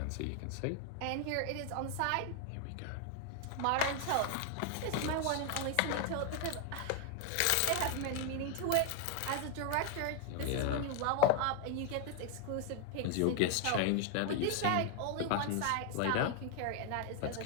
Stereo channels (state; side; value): different; both; correlation 0.01